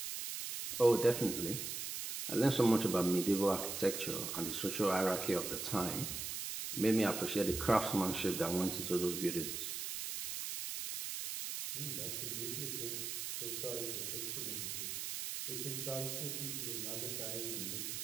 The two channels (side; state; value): right; noise; hiss, 4 dB below the sound